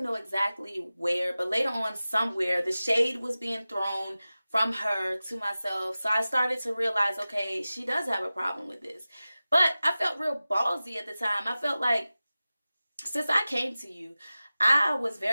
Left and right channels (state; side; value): inverted; both; correlation -0.96